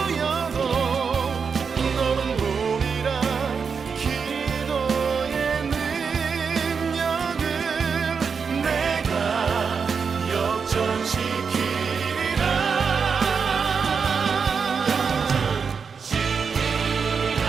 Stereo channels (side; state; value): left; quieter; 5.8 dB